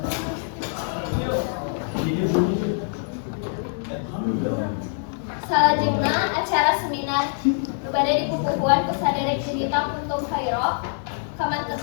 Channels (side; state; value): right; silent; 62 dB below the other